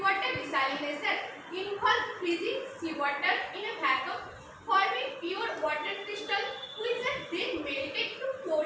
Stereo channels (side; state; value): both; identical; correlation 1.00